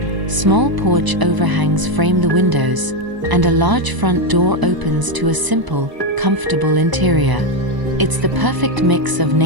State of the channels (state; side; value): late; left; 1.0 ms